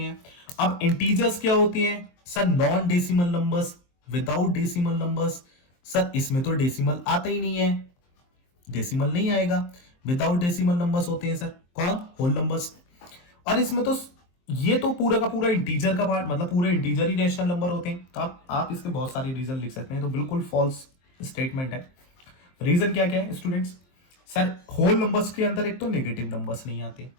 अब इंटीजर्स क्या होते हैं sir, non decimal numbers, without decimal numbers. Sir इसमें तो डेसिमल आता ही नहीं है, डेसिमल नहीं आएगा, विदाउट डेसिमल नंबर्स होते हैं सर, कौन, होल नंबर्स। और इसमें तो ये तो पूरा का पूरा इंटीजर का पार्ट, मतलब पूरे इंटीजर ही रैशनल नंबर होते हैं। तो आप इसके बहुत सारे रीजन लिख सकते हैं, तो बिल्कुल फॉल्स स्टेटमेंट है। रीजन क्या क्या है स्टूडेंट्स, सर होल नंबर्स के अंदर एक तो नेगेटिव नंबर्स नहीं आते,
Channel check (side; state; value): right; late; 23 ms